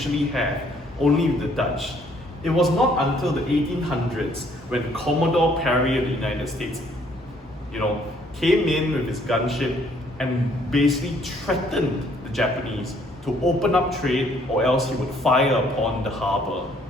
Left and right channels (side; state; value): both; normal; correlation 0.64